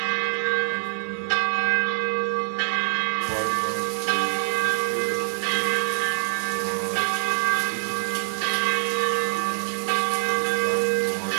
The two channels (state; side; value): silent; left; digital silence